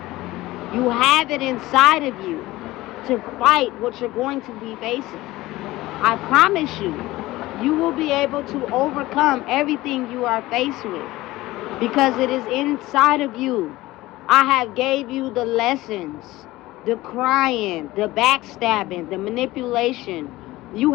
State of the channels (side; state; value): right; quieter; 18.1 dB